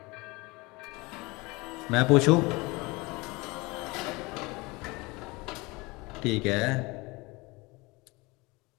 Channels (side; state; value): right; quieter; 24.4 dB